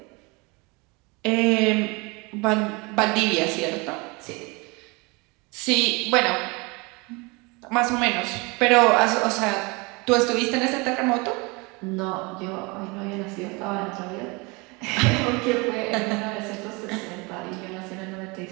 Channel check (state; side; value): quieter; left; 27.2 dB